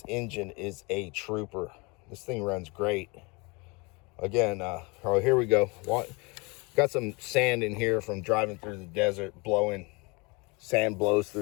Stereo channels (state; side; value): quieter; right; 28.1 dB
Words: engine is a trooper. This thing runs great. Again, oh, here we go. Got some sand in here from driving through the desert, blowing. Sand blows